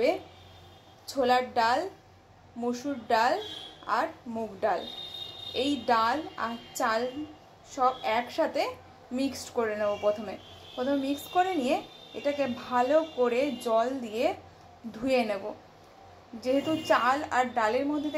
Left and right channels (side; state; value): both; identical; correlation 1.00